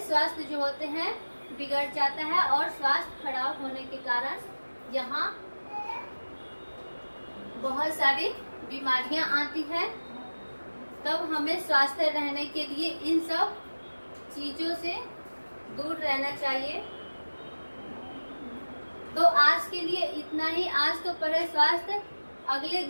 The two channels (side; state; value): both; inverted; correlation -1.00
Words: स्वास्थ्य जो होते हैं बिगड़ जाता है और स्वास्थ्य खराब होने के कारण यहाँ बहुत सारी बीमारियां आती है। तब हमें स्वस्थ रहने के लिए इन सब चीजों से दूर रहना चाहिए। तो आज के लिए इतना ही। आज तो पढ़े स्वास्थ्य, अगले